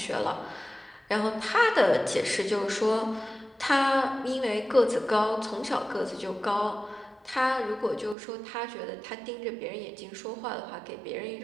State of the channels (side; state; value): left; drops out; at 8.2 s